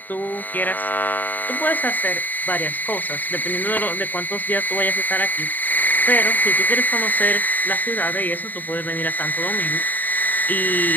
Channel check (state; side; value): late; right; 0.087 ms